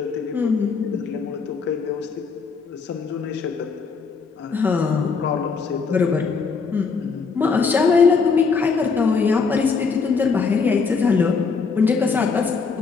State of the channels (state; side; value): quieter; right; 5.1 dB